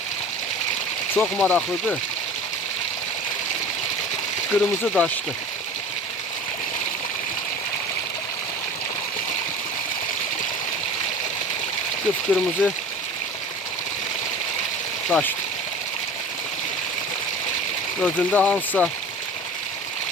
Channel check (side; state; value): both; normal; correlation 0.38